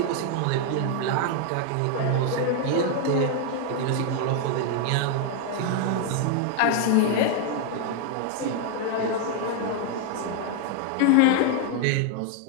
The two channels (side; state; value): both; different; correlation 0.00